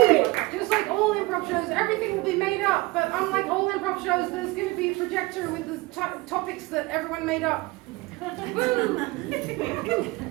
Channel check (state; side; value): quieter; left; 22.3 dB